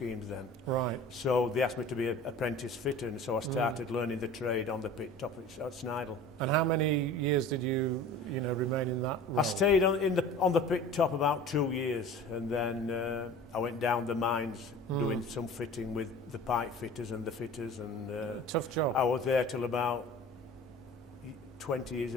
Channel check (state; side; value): normal; both; correlation 0.41